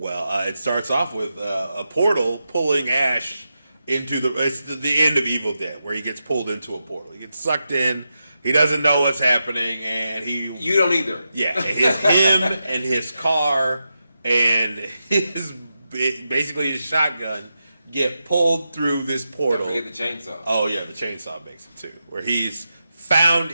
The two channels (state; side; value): inverted; both; correlation -0.88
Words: starts off with a portal pulling Ash into it's the end of Evil Dead, where he gets pulled into a portal. He gets sucked in, he doesn't know what's happening, and You don't either. Yeah, it's him and his car and basically his shotgun get pulled through this portal. Don't forget the chainsaw. Oh yeah, the chainsaw makes it too, where he's